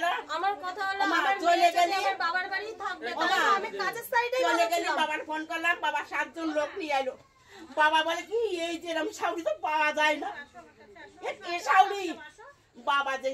আমার কথা হলো ওমা আমার চলে গেলে আমার বাবার বাড়ি থাকবে। ওমা আমি কাজের সাইডে চলে গেলে বাবার ফোন করলাম, বাবা 7 জন লোক নিয়ে এলো। বাবা বলে কি এই যে এরকম শাউরি তো পাওয়া যায় না। এ শাউরি বাবা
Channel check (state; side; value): identical; both; correlation 1.00